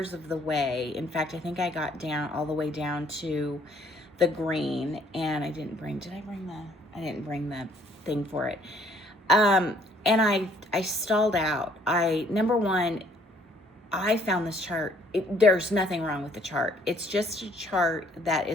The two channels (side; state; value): both; normal; correlation 0.62